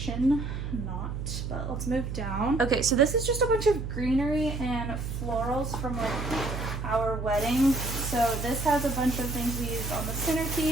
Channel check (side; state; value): right; noise; hum, 5 dB below the sound